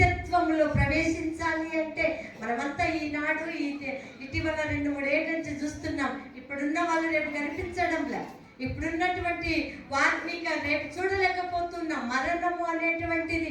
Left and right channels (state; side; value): identical; both; correlation 1.00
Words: ప్రవేశించాలి అంటే మనమంతా ఈనాడు ఇటీవల 2-3 ఏళ్ళ నుంచి చూస్తున్నాం. ఇప్పుడున్న వాళ్ళు రేపు కనిపించడంలే. ఇప్పుడున్నటువంటి వారిని రేపు చూడలేకపోతున్నాం. మరణము